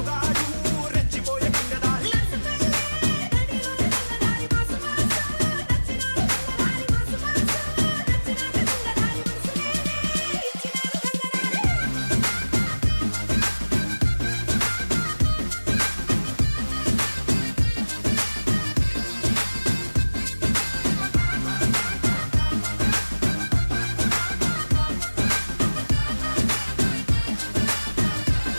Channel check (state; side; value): inverted; both; correlation -1.00